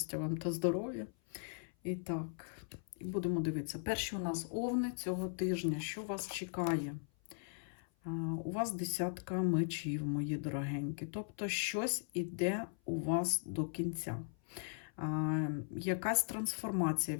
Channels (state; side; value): silent; right; 52 dB below the other